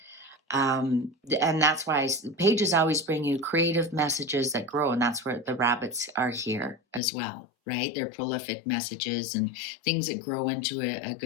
And that's why pages always bring you creative messages that grow. And that's where the rabbits are here as well, right? They're prolific messages and things that grow into a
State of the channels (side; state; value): right; drops out; at 7.0 s